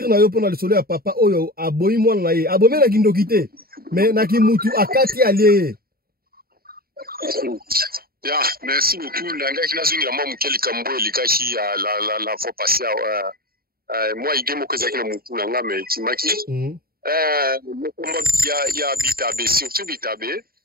na yo pona le soleil à papa oyo aboyi mwana na ye. Abome na kindokite. Mais na kimutu akati aliye. Ya, merci beaucoup. Nanga kina zungi na mwa mkeli kambo likashi la fois passé moi idemo kozaki na mutu nanga me timaki. Mokomba ya Bitabe, surtout Bitabe.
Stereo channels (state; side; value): late; left; 0.43 ms